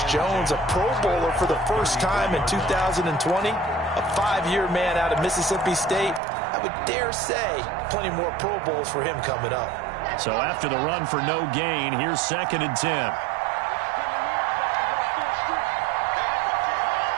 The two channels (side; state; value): left; drops out; at 6.2 s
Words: Jones, a Pro Bowler for the first time in 2020. A 5-year man out of Mississippi State. I would dare say plenty more Pro Bowls for him coming up. So after the run for no gain, here's 2nd and 10.